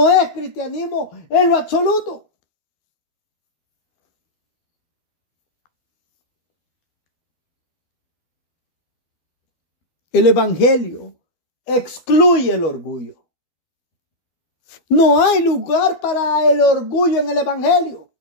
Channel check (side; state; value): right; late; 12 ms